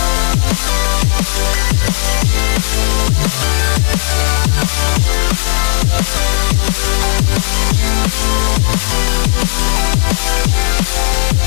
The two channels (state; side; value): silent; right; digital silence